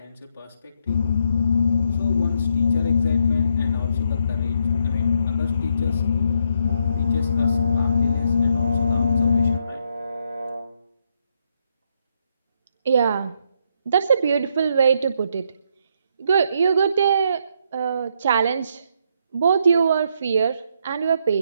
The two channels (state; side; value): inverted; both; correlation -0.75